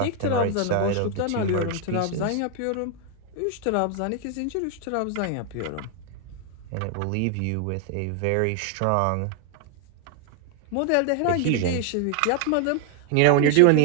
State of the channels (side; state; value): both; different; correlation 0.00